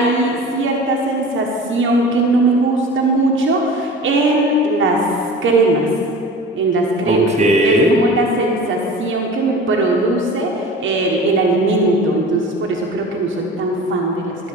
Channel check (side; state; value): both; normal; correlation 0.38